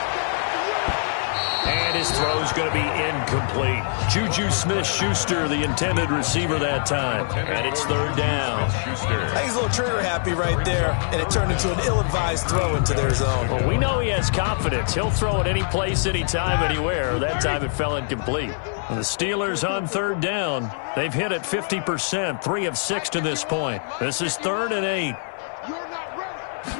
And his throw's going to be incomplete. Juju Smith-Schuster, the intended receiver that time. And it's 3rd down. I think he's a little trigger happy right there, and it turned into an ill-advised throw into their zone. Well, we know he has confidence. He'll throw it any place, anytime, anywhere. That time it fell incomplete. And the Steelers on 3rd down. They've hit it 50%, 3 of 6 to this point. This is 3rd and 8.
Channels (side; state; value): right; silent; 59 dB below the other